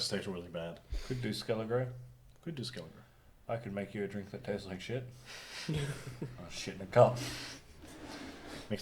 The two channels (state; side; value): identical; both; correlation 1.00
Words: to taste really bad. Could do Skelligro. Could do Skelligro. I could make you a drink that tastes like shit. Oh, shit in a cup.